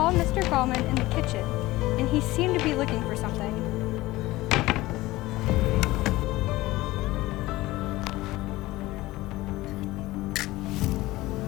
Mr. Gallman in the kitchen, and he seemed to be looking for something.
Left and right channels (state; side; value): quieter; right; 18.5 dB